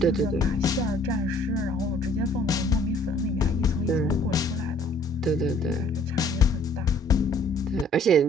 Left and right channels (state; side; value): normal; both; correlation 0.58